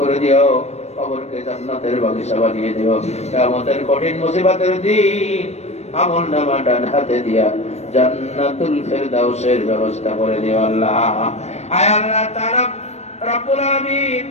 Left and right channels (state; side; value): late; right; 0.31 ms